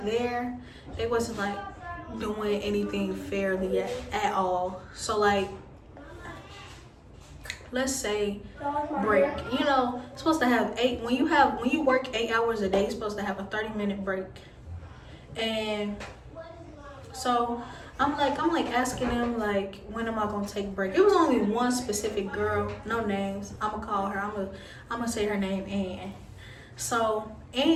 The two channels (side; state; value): both; identical; correlation 1.00